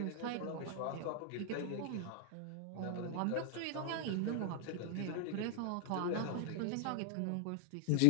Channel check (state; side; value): different; both; correlation 0.00